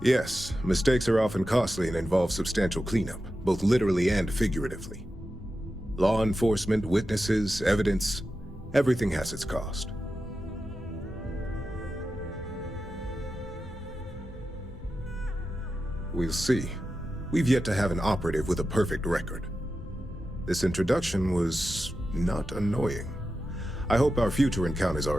mistakes are often costly and involve substantial cleanup, both literally and figuratively. Law enforcement, witnesses, evidence, everything has its cost. We'll see. We've yet to have an operative with a perfect record. This introduction was not annoying. I hope our future encounters are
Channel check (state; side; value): normal; both; correlation 0.91